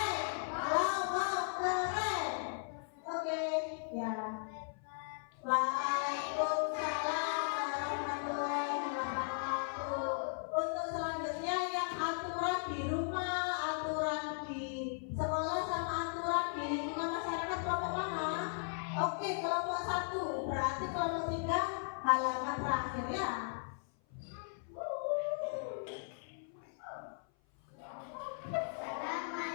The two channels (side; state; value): right; silent; 53 dB below the other